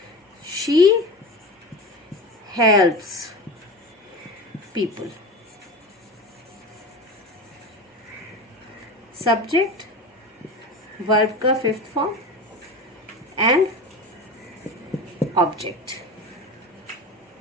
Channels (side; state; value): both; normal; correlation 0.29